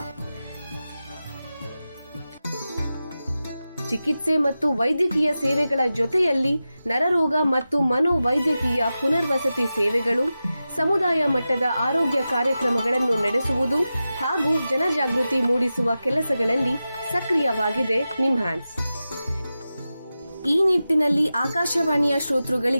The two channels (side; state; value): both; inverted; correlation -0.93